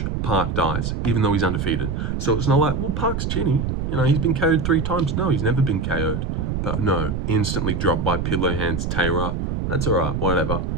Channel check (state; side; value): noise; right; rumble, 2 dB below the sound